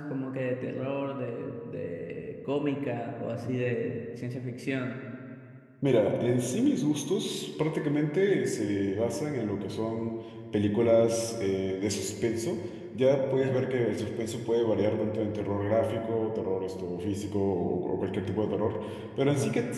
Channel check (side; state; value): both; identical; correlation 1.00